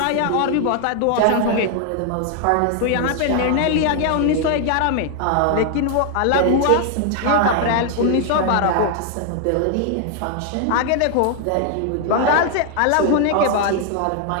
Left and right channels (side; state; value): both; different; correlation 0.00